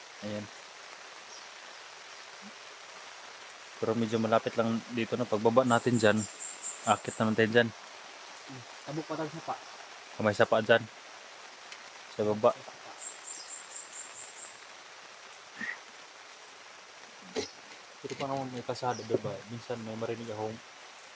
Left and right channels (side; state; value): both; identical; correlation 1.00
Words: Ayan. Pero medyo malapit lang dito na pagbaba natin dyan. Akit na natin dyan. Tabok pa tag sapa. Kamay sapa dyan. Sa baba. Pero pa naman may kasada, diba? Minsan may marinig akong